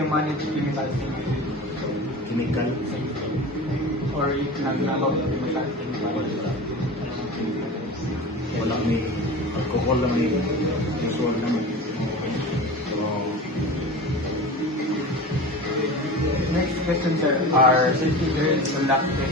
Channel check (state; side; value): normal; both; correlation 0.32